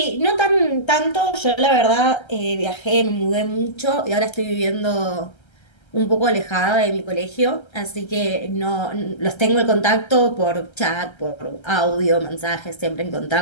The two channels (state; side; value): late; right; 1.3 ms